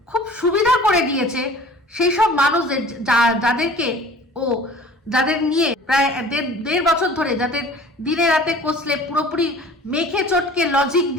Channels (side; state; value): both; normal; correlation 0.46